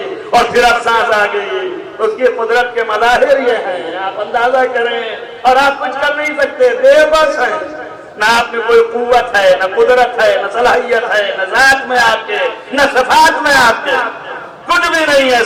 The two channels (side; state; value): both; identical; correlation 1.00